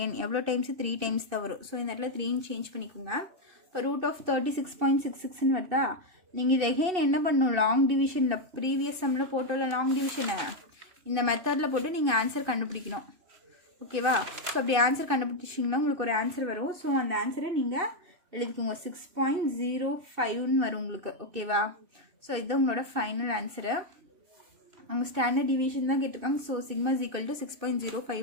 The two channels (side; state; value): left; late; 2.6 ms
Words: எவ்வளோ டைம்ஸ், 3 டைம்ஸ் தான் வரும். ஸோ இந்த இடத்துல 3ன்னு சேஞ்ச் பண்ணிக்கோங்க. இப்போ ரூட் ஆஃப் 36.66ன்னு வருதா? நீங்கள் இது எகெயின் என்ன பண்ணணும், லாங் டிவிஷனில் ப்ரீவியஸ் சம்மில் போட்டோம்ல லாங் டிவிஷனை, இந்த மெத்தடில் போட்டு நீங்கள் ஆன்சர் கண்டுபிடிக்கணும். ஓகேவா? ஸோ அப்படி ஆன்சர் கண்டுபிடிச்சிங்கன்னா உங்களுக்கு ஒரு ஆன்சர் வரும். ஸோ அந்த ஆன்சரை நீங்கள் எழுதிக்கோங்க, 6.05ன்னு வரும் உங்களுக்கு. ஓகேவா? ஸோ இதுதான் உங்களோட ஃபைனல் ஆன்சரு. அவங்க ஸ்டாண்டர்ட் டிவிஷன் தான் கேட்டிருக்காங்க. So sigma is equal to